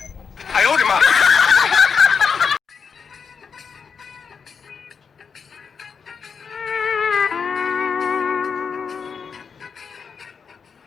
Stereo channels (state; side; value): quieter; right; 6.1 dB